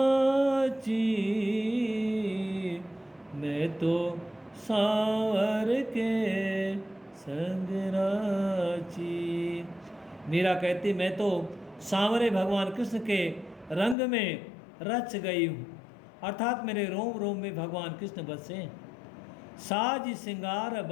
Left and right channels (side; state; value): right; drops out; at 14.0 s